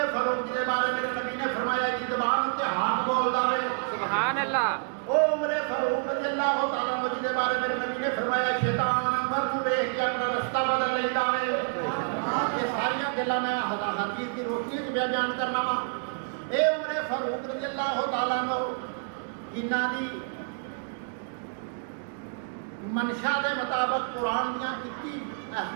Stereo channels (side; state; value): left; silent; digital silence